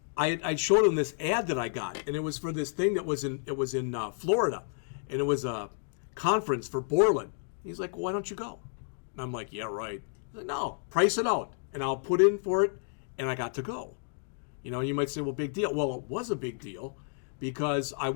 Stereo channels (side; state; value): right; silent; digital silence